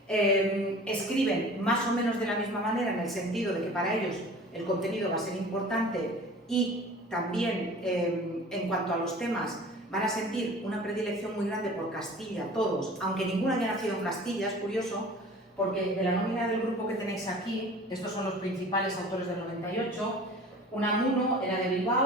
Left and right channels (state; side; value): normal; both; correlation 0.42